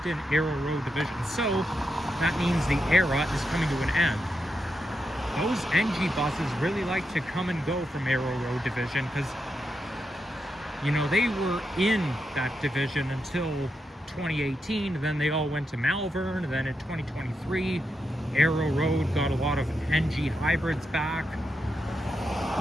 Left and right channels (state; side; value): normal; both; correlation 0.85